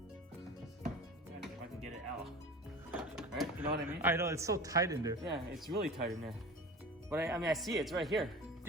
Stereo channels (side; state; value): both; normal; correlation 0.36